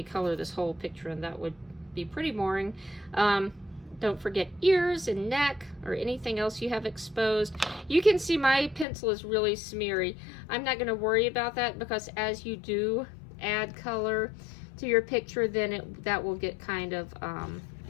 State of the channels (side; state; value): right; drops out; at 8.8 s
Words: color this whole picture, and that would be pretty boring. Don't forget ears and neck or anything else you have exposed. You can see my pencil is really smeary. I'm not going to worry about that, because as you do add color to your picture, then that will get kind of